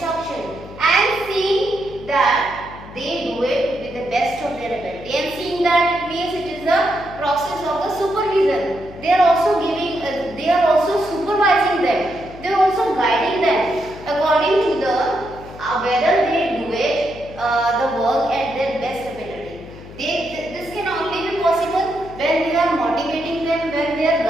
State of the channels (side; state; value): left; noise; hum, 16 dB below the sound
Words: and seeing that they do it with the best of their ability. And seeing that, it means it is a process of the supervision. They are also giving, they are also supervising them. They are also guiding them according to the whether they do it the work at their best ability. This can only be possible when they are motivating them, when they are